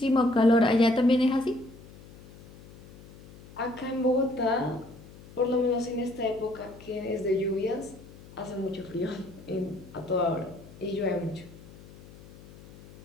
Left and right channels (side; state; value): left; noise; hum, 20 dB below the sound